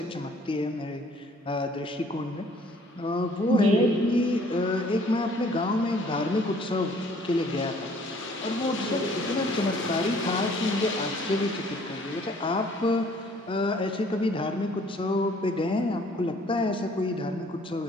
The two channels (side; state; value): both; normal; correlation 0.58